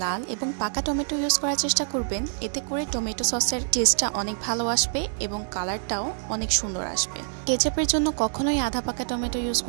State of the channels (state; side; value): silent; left; digital silence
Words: লাল এবং পাকা টমেটো ইউজ করার চেষ্টা করবেন, এতে করে টমেটো সসের টেস্টটা অনেক ভালো আসবে এবং কালারটাও অনেক সুন্দর আসবে। কেচাপের জন্য কখনোই আধা পাকা টমেটো ইউজ